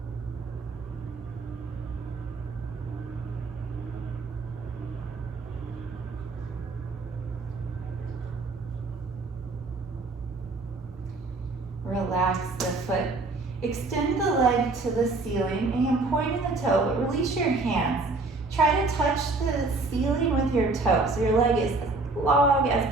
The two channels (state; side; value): quieter; left; 3.5 dB